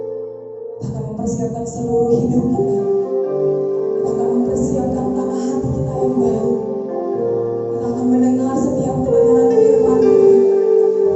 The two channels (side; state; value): both; identical; correlation 1.00